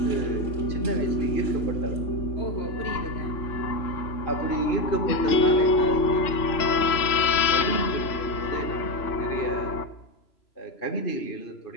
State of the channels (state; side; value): late; right; 3.0 ms